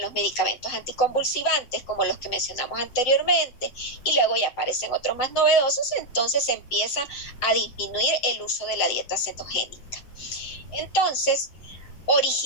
los medicamentos anticonvulsivantes, como los que mencionamos anteriormente, y luego ya aparecen otros más novedosos, entonces se empieza a disminuir el uso de la dieta cetogénica. Entonces,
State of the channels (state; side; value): late; right; 8.0 ms